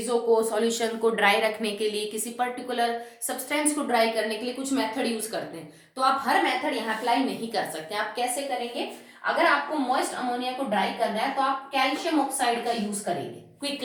को, सॉल्यूशन को ड्राई रखने के लिए, किसी पर्टिकुलर सब्सटेंस को ड्राई करने के लिए कुछ मेथड यूज करते हैं। तो आप हर मेथड यहाँ अप्लाई नहीं कर सकते। आप कैसे करेंगे, अगर आपको मॉइस्ट अमोनिया को ड्राई करना है तो आप कैल्शियम ऑक्साइड का यूज करेंगे, क्विक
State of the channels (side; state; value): both; identical; correlation 1.00